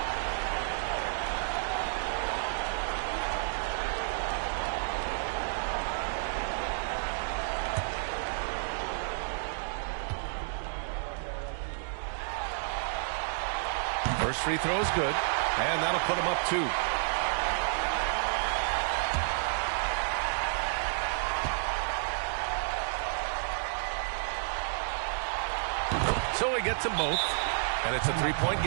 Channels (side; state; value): left; silent; digital silence